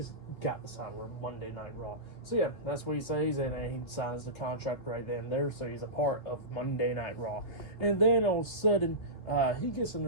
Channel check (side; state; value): right; late; 3.2 ms